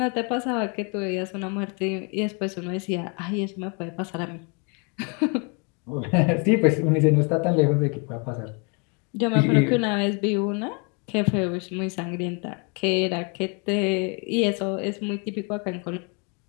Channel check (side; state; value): right; quieter; 34.6 dB